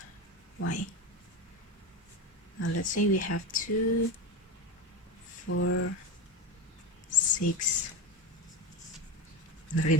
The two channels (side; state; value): both; normal; correlation 0.19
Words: Y. Now let's say we have 2, 4, 6. Not